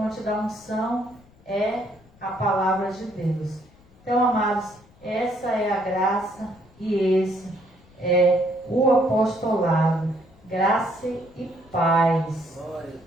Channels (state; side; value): noise; left; rumble, 27 dB below the sound